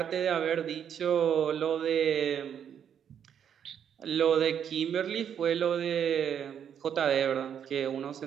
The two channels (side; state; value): left; quieter; 8.6 dB